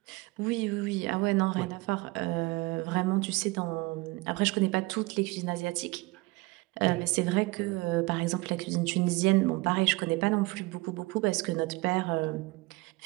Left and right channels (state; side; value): quieter; left; 23.2 dB